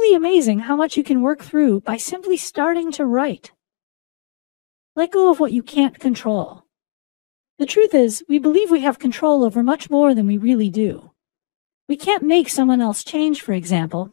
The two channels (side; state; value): right; silent; 68 dB below the other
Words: amazing how much you can work through by simply starting to write. Let go of what you can't control. The truth is, we believe we have control over much more than we really do. We can't make someone else change, for example,